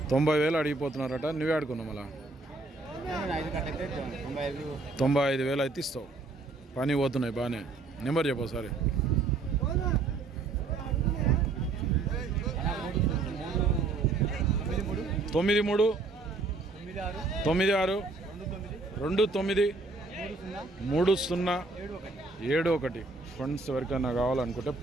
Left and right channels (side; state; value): left; quieter; 3.6 dB